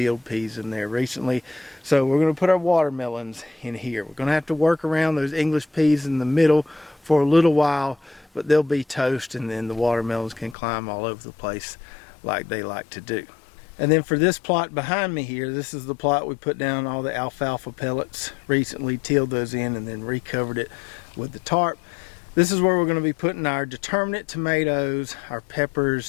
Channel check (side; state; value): right; drops out; at 10.6 s